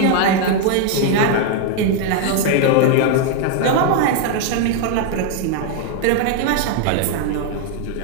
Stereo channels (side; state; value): both; different; correlation 0.00